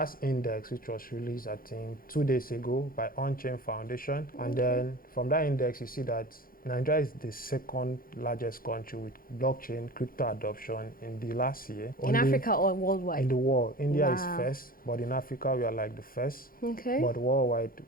index, which was released, I think, 2 days ago by On-Chain Foundation. And then from that index, you see that Nigeria is the second largest country with blockchain crypto adoption in the last year. In Africa or worldwide? In the world. India is first, but in Africa, we are like the first. Okay. But worldwide,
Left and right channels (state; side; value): late; right; 0.42 ms